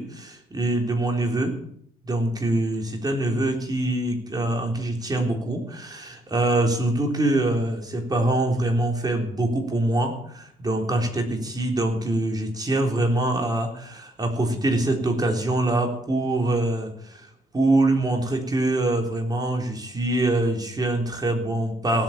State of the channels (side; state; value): both; normal; correlation 0.72